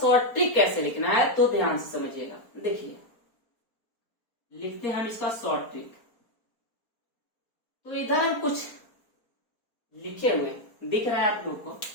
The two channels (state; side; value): late; right; 4.4 ms